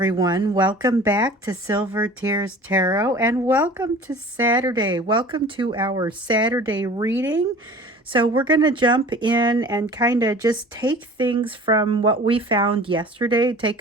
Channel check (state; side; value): normal; both; correlation 0.43